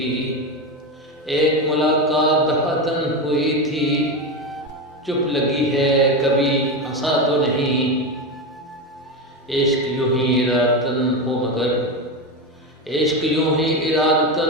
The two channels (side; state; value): both; normal; correlation 0.17